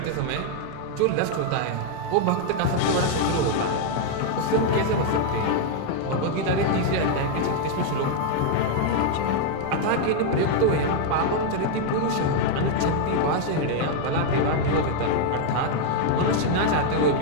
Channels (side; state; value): both; different; correlation 0.00